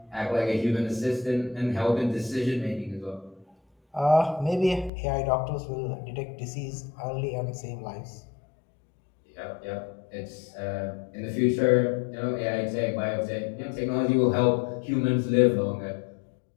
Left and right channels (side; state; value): right; drops out; at 4.9 s